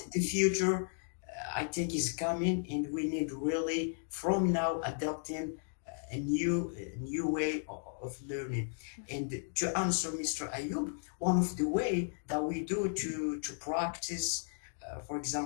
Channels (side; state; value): right; silent; digital silence